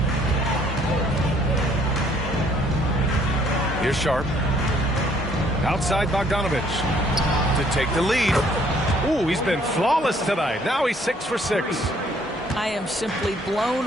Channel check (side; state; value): both; normal; correlation 0.63